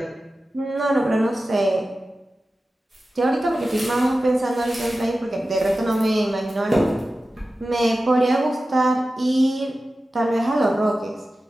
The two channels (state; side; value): normal; both; correlation 0.94